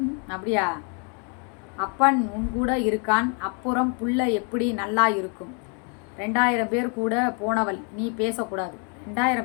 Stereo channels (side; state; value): right; quieter; 38.0 dB